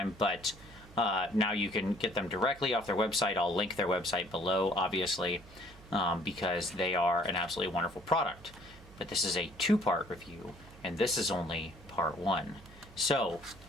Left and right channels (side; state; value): right; noise; hum, 21 dB below the sound